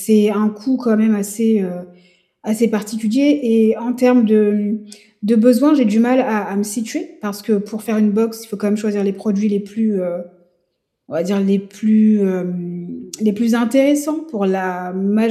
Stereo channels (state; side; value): identical; both; correlation 1.00